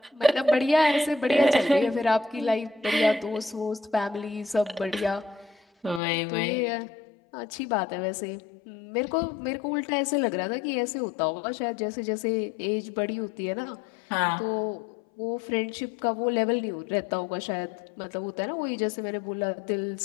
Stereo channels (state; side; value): drops out; right; at 6.0 s